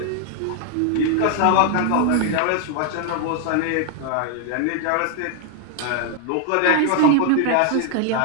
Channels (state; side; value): different; both; correlation 0.00